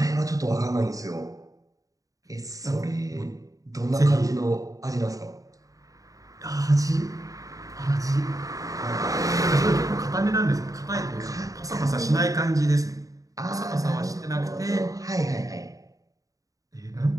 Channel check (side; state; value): left; late; 0.16 ms